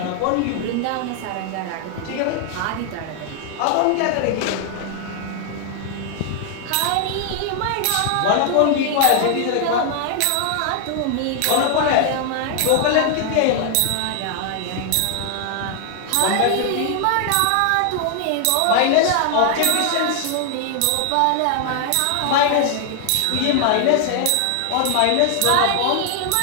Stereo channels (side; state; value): both; different; correlation 0.00